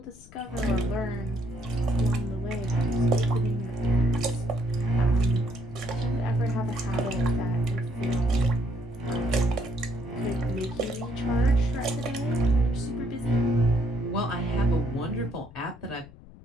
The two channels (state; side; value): noise; left; rumble, 20 dB below the sound